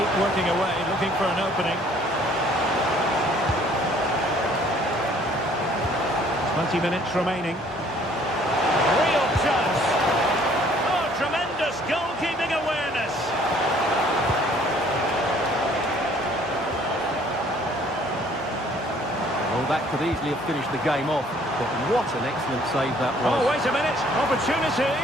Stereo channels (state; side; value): normal; both; correlation 0.58